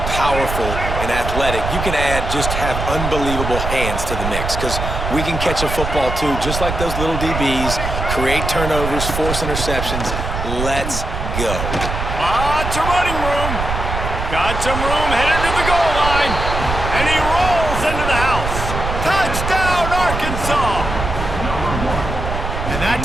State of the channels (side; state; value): right; noise; rumble, 4 dB below the sound